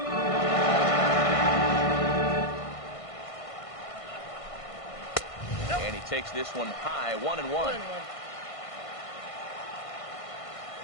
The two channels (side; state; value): right; late; 1.5 ms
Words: And he takes this one high, 1-1.